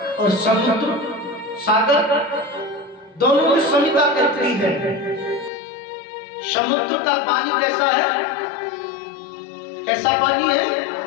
और समुद्र सागर दोनों में समता कितनी है? समुद्र का पानी कैसा है? कैसा पानी है?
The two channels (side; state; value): right; drops out; at 5.5 s